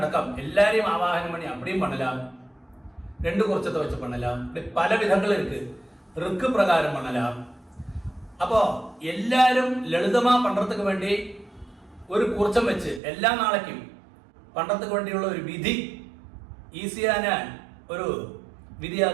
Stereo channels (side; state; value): left; drops out; at 13.0 s